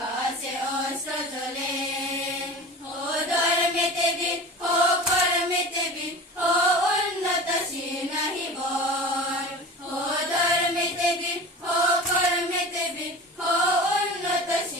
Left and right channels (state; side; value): normal; both; correlation 0.35